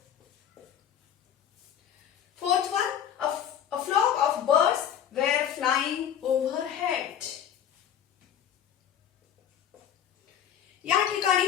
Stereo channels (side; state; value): right; quieter; 9.5 dB